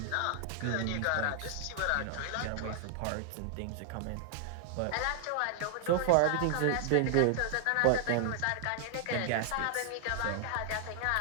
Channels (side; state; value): both; different; correlation 0.00